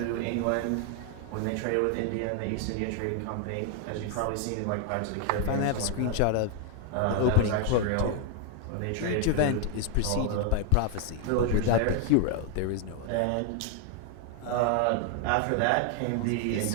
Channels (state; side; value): different; both; correlation 0.01